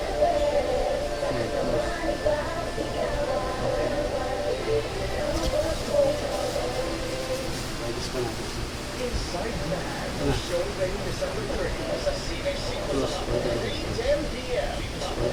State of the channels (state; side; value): identical; both; correlation 1.00